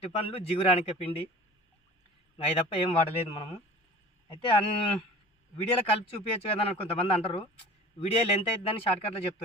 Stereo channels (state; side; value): normal; both; correlation 0.41